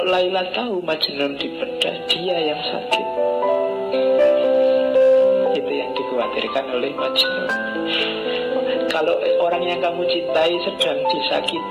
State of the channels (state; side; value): identical; both; correlation 1.00